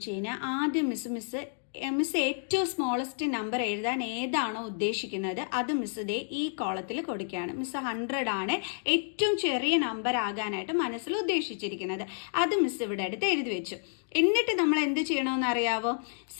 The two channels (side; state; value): right; silent; digital silence